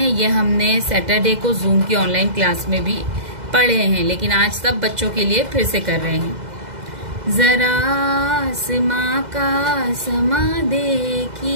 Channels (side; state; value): left; late; 2.0 ms